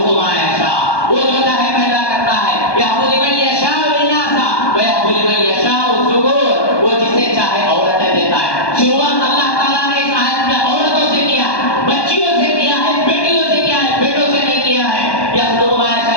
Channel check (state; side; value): late; right; 1.2 ms